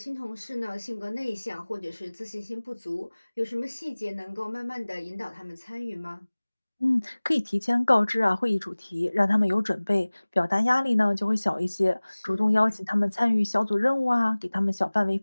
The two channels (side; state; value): both; inverted; correlation -1.00